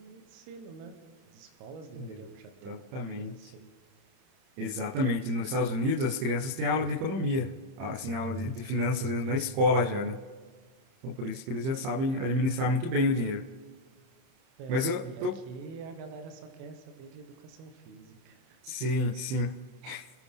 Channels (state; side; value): late; left; 30 ms